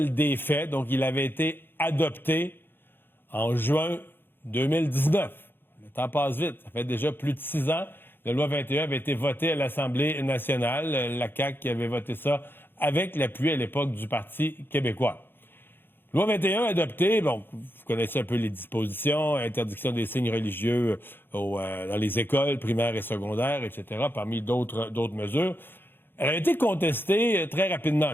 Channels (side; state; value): right; late; 0.10 ms